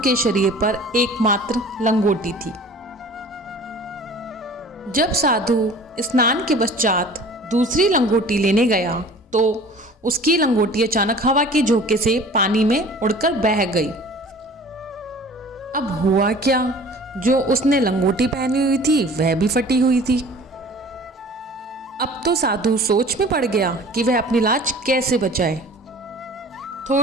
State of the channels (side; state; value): both; normal; correlation 0.46